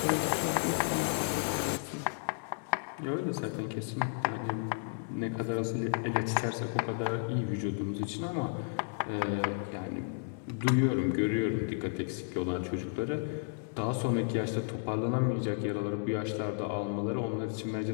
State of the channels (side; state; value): right; silent; digital silence